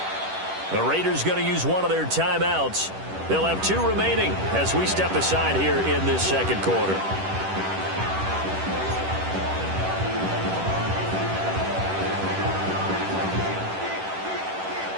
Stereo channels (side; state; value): left; late; 10 ms